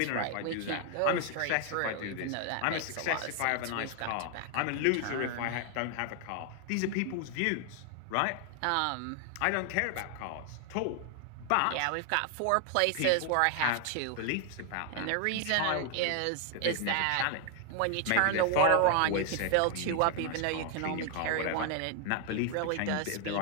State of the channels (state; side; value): different; both; correlation 0.00